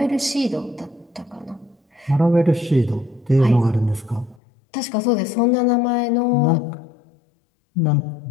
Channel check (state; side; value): drops out; right; at 4.4 s